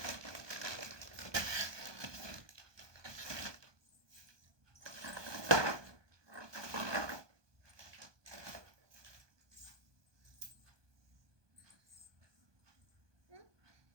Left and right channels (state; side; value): late; left; 1.2 ms